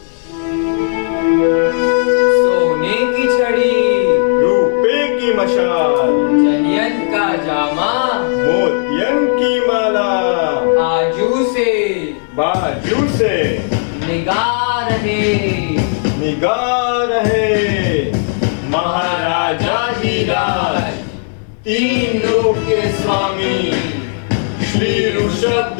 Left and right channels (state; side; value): silent; right; digital silence